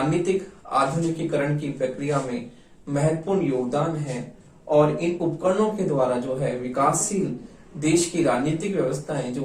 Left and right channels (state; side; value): identical; both; correlation 1.00